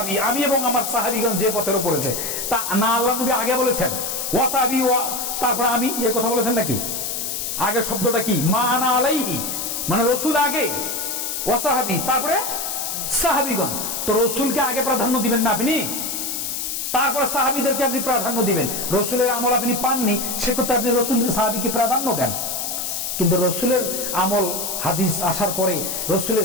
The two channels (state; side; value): noise; left; hiss, 3 dB below the sound